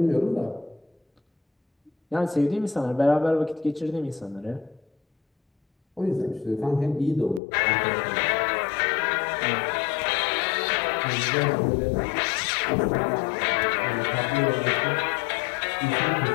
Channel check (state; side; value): drops out; right; at 7.4 s